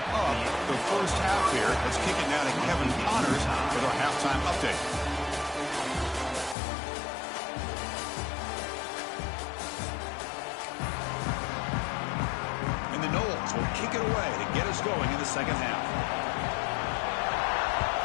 up the first half here. Let's kick it now to Kevin Connors with our halftime update. And the Knowles will kick it away to get us going in the second half.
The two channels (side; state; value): right; drops out; at 6.6 s